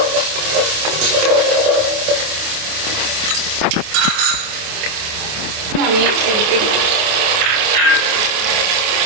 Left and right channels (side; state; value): left; late; 28 ms